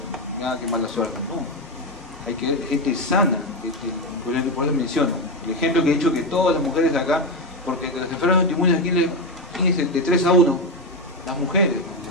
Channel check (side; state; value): both; normal; correlation 0.12